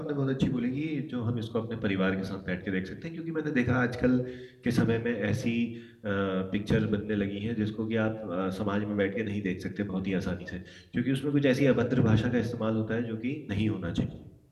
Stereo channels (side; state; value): both; identical; correlation 1.00